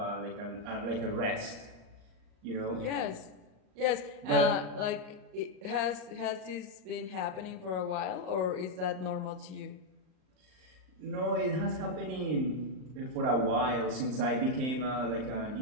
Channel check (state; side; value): late; left; 38 ms